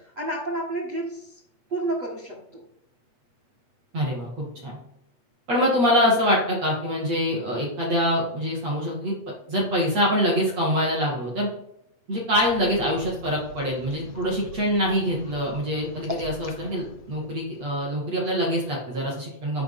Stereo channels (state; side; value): late; left; 8.4 ms